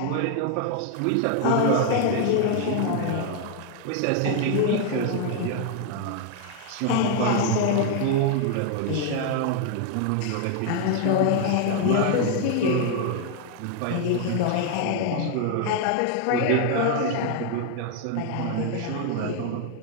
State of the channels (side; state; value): both; different; correlation 0.00